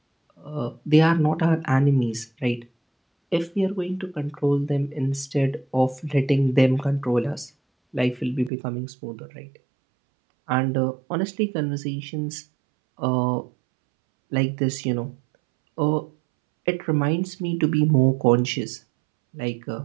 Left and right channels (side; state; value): left; drops out; at 8.5 s